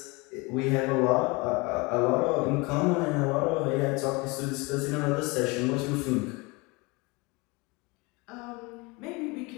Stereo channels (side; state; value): right; quieter; 26.3 dB